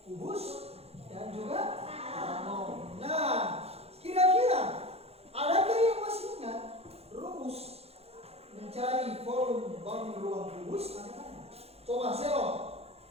Kubus dan juga balon. Nah, kira-kira adakah yang masih ingat rumus mencari volume bangun ruang kubus? Ada? Coba Selo.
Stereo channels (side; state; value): left; late; 0.29 ms